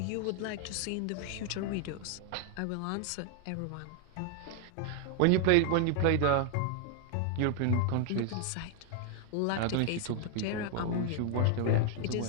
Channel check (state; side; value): different; both; correlation 0.00